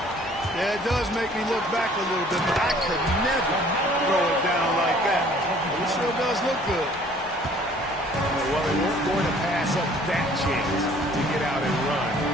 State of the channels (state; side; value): normal; both; correlation 0.55